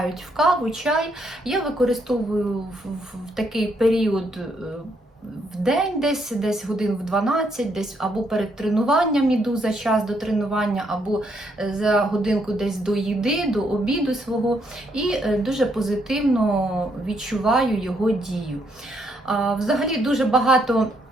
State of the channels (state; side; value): normal; both; correlation 0.74